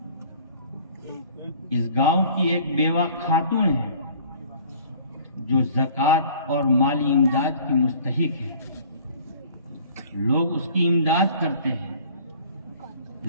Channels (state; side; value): inverted; both; correlation -0.50